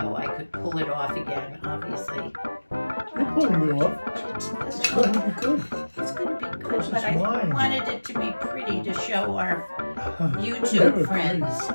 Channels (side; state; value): both; inverted; correlation -1.00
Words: I could pull it off again. Obviously, You're pulling it off. It's going to be good. It's going to be good, Because but it's I wine. wanted it to be pretty to show our Never YouTube friends.